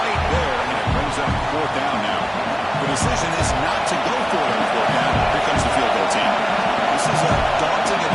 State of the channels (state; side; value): identical; both; correlation 1.00